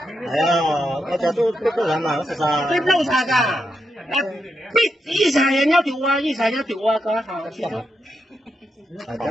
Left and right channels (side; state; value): both; normal; correlation 0.84